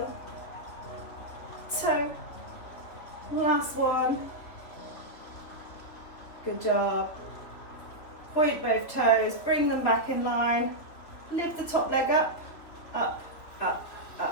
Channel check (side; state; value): right; late; 3.3 ms